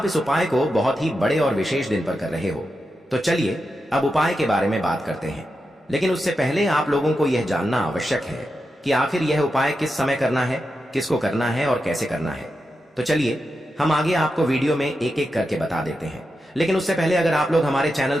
इस उपाय को बहुत ही बड़े और विशेष दिन पर कर रहे हो। तो चलिए अब उपाय के बारे में बात करते हैं, लेकिन उससे पहले आप लोगों को यह जानना आवश्यक है कि आखिर यह उपाय किस समय करना है, किसको करना है और कैसे करना है। तो चलिए हम आगे आपको वीडियो में एक एक करके बता देते हैं। लेकिन उससे पहले अगर आप लोग हमारे चैनल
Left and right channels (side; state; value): both; normal; correlation 0.88